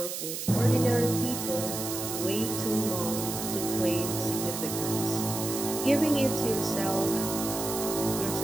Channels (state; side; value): noise; right; hiss, 5 dB below the sound